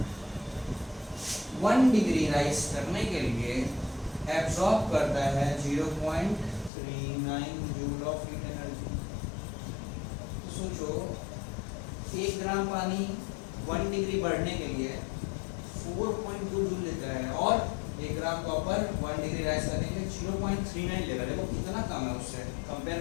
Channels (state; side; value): drops out; right; at 6.7 s